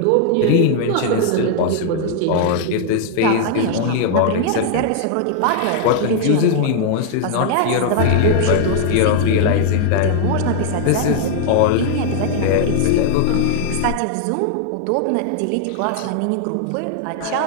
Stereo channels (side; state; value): both; different; correlation 0.00